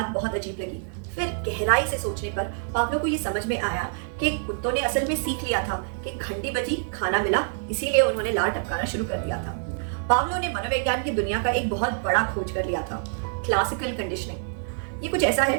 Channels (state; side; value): silent; left; 61 dB below the other